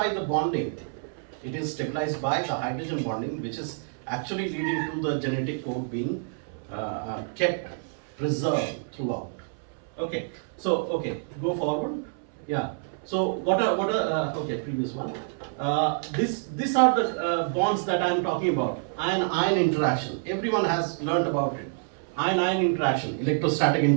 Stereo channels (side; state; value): left; silent; 60 dB below the other